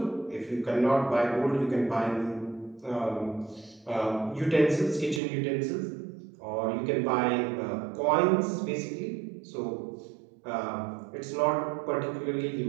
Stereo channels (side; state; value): left; drops out; at 5.2 s